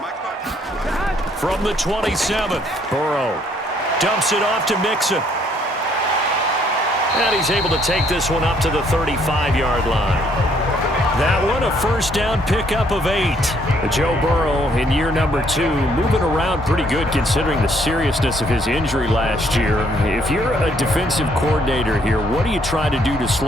From the 27th, Burrow dumps it off to Mixon. And he's able to take this one up to the 35-yard line. That one, a first down pickup of 8. Joe Burrow in year number 2, moving around pretty good considering the seriousness of his injury last year. If you're a defensive coordinator here, what do you try to do to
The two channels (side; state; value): both; normal; correlation 0.67